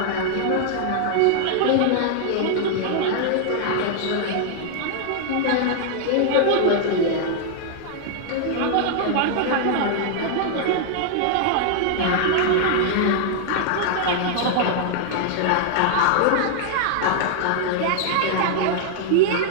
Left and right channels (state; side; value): different; both; correlation 0.00